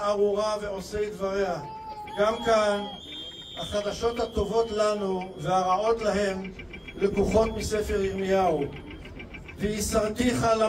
ועושי דבריה. גם כאן החדשות הטובות לנו והרעות להם לקוחות מספר ירמיהו. ויסרתיך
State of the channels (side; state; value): both; identical; correlation 1.00